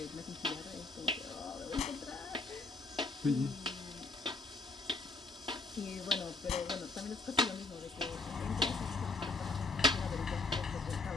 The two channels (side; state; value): right; quieter; 3.4 dB